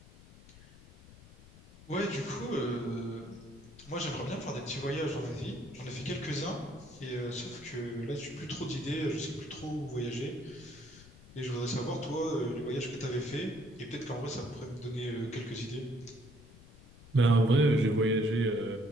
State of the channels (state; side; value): noise; left; rumble, 21 dB below the sound